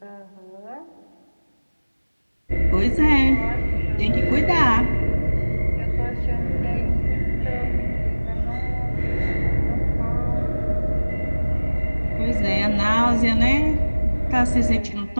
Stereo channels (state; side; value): inverted; both; correlation -1.00